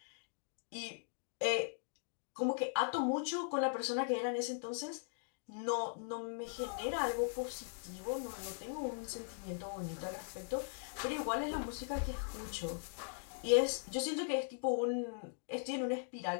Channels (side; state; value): right; silent; digital silence